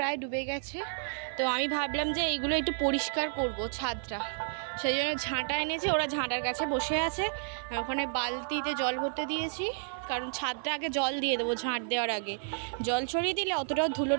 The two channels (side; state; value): left; silent; digital silence